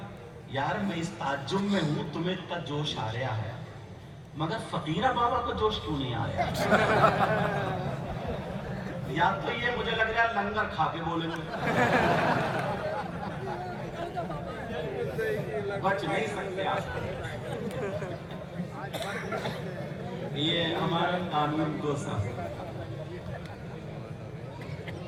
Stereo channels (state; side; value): identical; both; correlation 1.00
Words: یار میں اس تعجب میں ہوں, تمہیں اتنا جوش آ رہا ہے, مگر فقیرہ بابا کو جوش کیوں نہیں آ رہا؟ یا تو یہ مجھے لگ رہا ہے لنگر کھا کے بولیں گے, بچ نہیں سکتے آپ. یہ ہمارا قانون کو سا.